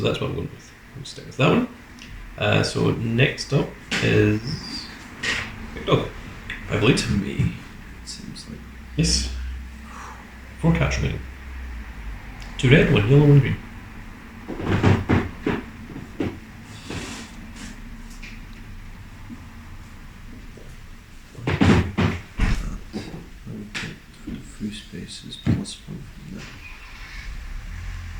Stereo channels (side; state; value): both; identical; correlation 1.00